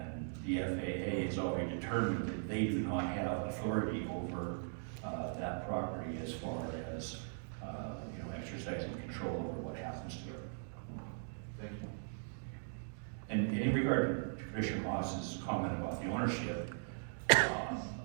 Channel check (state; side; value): silent; left; digital silence